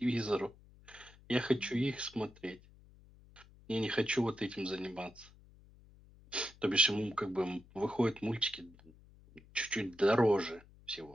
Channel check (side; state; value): left; noise; hum, 24 dB below the sound